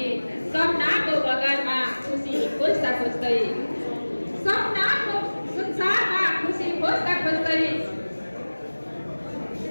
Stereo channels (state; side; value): inverted; both; correlation -1.00